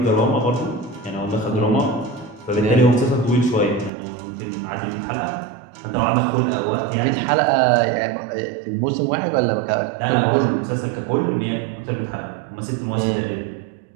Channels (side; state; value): left; drops out; at 3.9 s